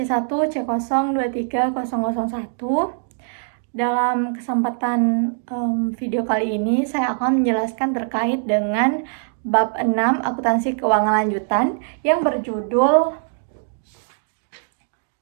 Dalam kesempatan video kali ini, saya akan menjelaskan terkait dengan bab 6 akuntansi keuangan lanjutan yang berjudul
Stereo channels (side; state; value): left; silent; digital silence